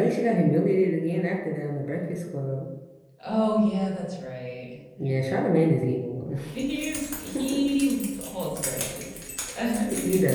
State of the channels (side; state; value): both; identical; correlation 1.00